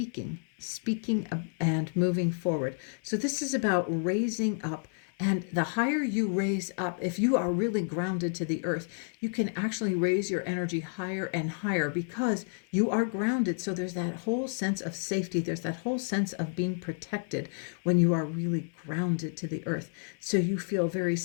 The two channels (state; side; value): silent; right; 57 dB below the other